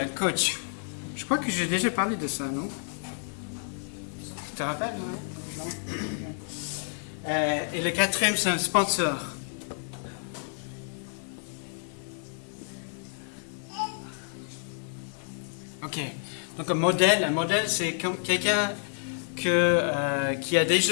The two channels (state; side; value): silent; right; 58 dB below the other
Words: coach. Je crois que j'ai déjà parlé de ça, non? Tu te rappelles, non? Et le quatrième, c'est un sponsor. Ok. Donc un modèle, c'est comme quelqu'un qui a